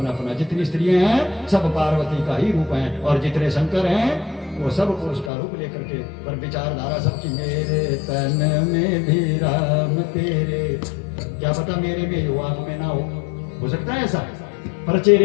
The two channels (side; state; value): right; drops out; at 5.3 s